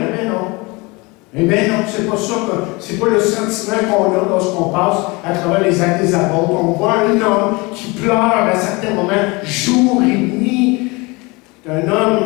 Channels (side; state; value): right; quieter; 25.7 dB